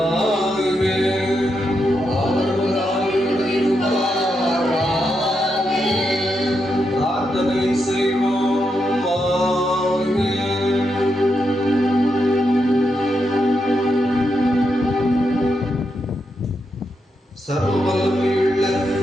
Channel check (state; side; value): normal; both; correlation 0.83